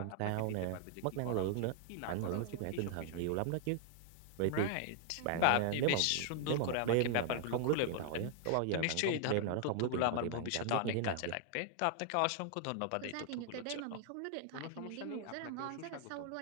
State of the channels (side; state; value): both; different; correlation 0.00